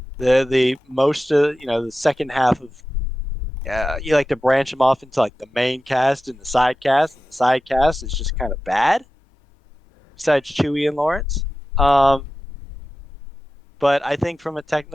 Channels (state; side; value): normal; both; correlation 0.93